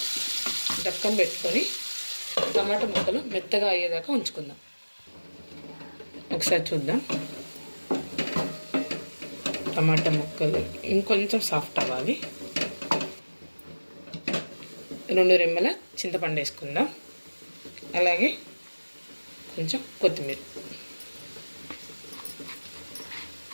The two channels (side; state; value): both; inverted; correlation -1.00